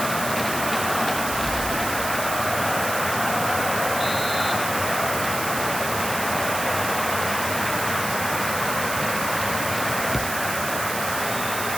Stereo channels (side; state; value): right; noise; hiss, 5 dB below the sound